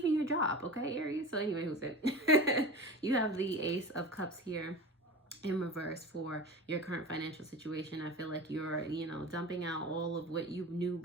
your job, okay, Aries? So anyway, who's it? You have the Ace of Cups here in reverse for your current financial situation. I feel like you're, dumping out all of what you knew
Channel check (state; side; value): normal; both; correlation 0.31